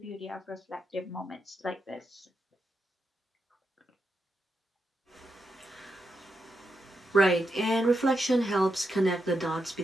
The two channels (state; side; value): normal; both; correlation 0.85